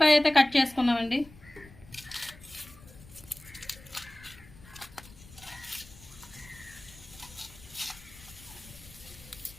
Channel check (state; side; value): noise; left; rumble, 20 dB below the sound